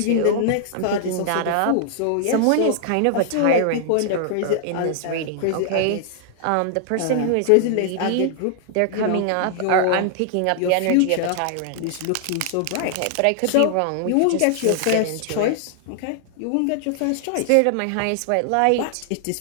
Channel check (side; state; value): both; different; correlation -0.01